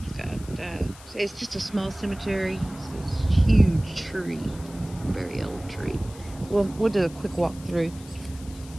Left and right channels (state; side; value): noise; left; hiss, 20 dB below the sound